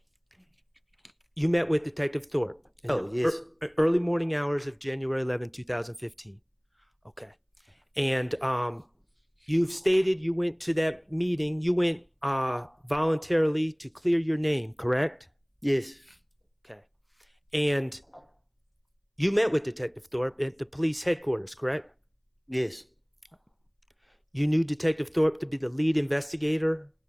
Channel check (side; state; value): both; identical; correlation 1.00